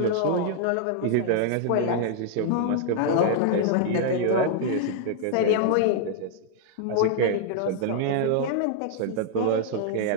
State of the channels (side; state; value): both; different; correlation 0.00